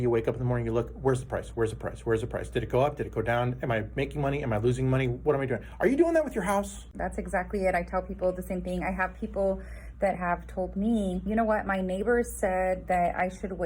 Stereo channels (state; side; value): identical; both; correlation 1.00